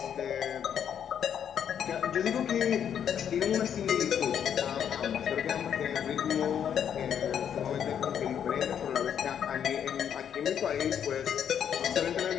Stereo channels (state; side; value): quieter; right; 8.7 dB